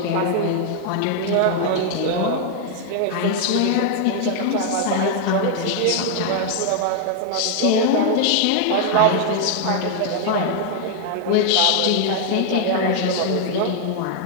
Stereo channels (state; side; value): different; both; correlation 0.00